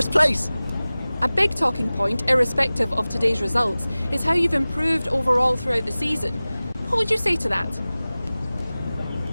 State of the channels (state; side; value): inverted; both; correlation -0.98